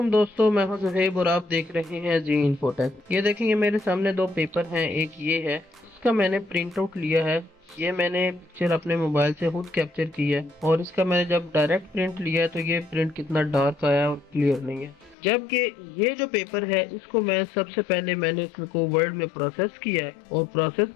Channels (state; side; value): drops out; right; at 15.2 s